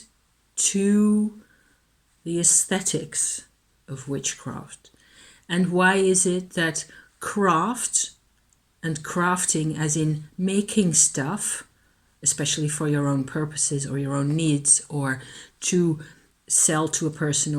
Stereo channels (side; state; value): both; identical; correlation 1.00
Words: to the aesthetics of witchcraft. And why is it that craft and crafting as in making stuff, especially for your own purposes or your own needs, or to sell to a person